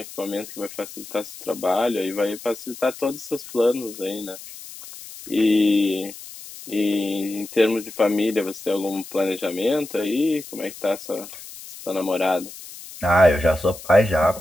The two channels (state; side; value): noise; left; hiss, 15 dB below the sound